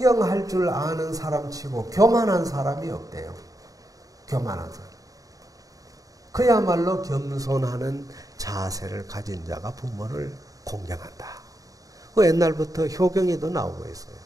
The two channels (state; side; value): late; left; 0.17 ms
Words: 줄 아는 사람 치고 교만한 사람이 없대요. 교만한 사람. 그야말로 겸손하는 자세를 가진 자가 부모를 공경한다. 그 옛날부터 효경에도 나오고 있어요.